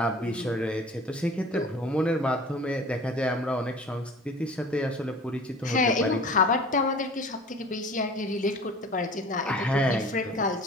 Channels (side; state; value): both; normal; correlation 0.43